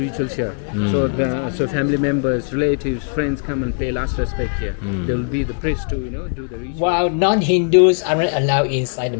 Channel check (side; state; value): right; silent; 62 dB below the other